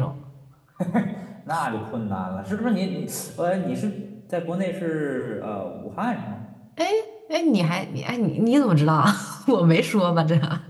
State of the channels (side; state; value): both; identical; correlation 1.00